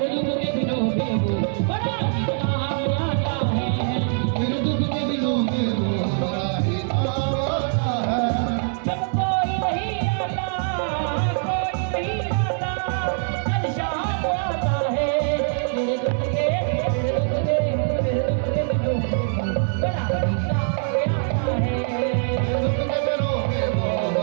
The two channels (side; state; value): left; silent; 59 dB below the other